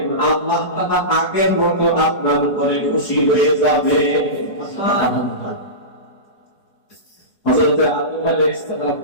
আল্লাহ তাআলা আগের মতো আপনার উপরে খুশি হয়ে যাবে। সুবহানাল্লাহ। হযরত আদম আলাইহিস সালাম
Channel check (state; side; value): late; right; 4.8 ms